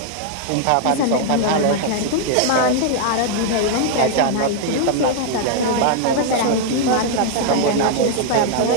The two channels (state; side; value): different; both; correlation 0.00